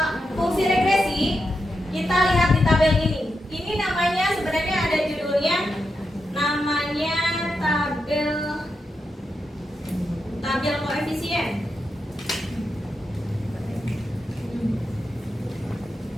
fungsi regresi, kita lihat di tabel ini. Ini namanya sebenarnya ada judulnya, namanya tabel koefisien.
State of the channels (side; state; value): both; normal; correlation 0.87